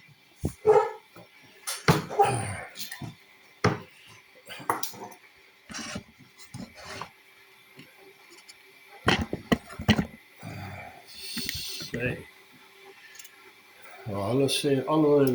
Nou, hulle sê alhoewel die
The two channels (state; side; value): identical; both; correlation 1.00